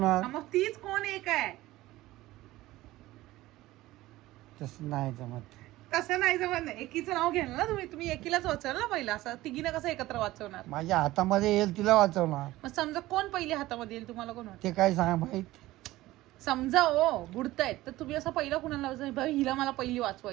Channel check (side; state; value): left; quieter; 17.2 dB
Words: हा, मग तीच कोण एक आहे? तसं नाही जमत. तसं नाही जमत नाही. एकीचं नाव घ्याल ना तुम्ही एकीलाच वाचवाल ना पहिला. असं तिघीनं कसं एकत्र वाचवणार? माझ्या हातामध्ये येईल तिला वाचवणार. मग समजा कोण पहिले हातामध्ये येईल तुम्हाला कोण वाटतं? ते काय सांग माहित. समजा हो बुडतायत तर तुम्ही असं पहिला कुणाला वाचवायचं? हिला मला पहिली